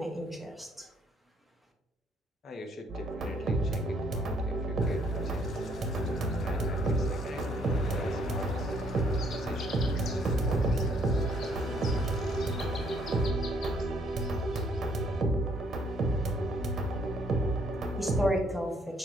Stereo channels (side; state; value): both; normal; correlation 0.66